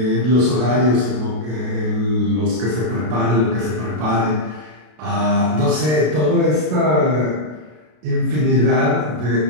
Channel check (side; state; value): left; late; 33 ms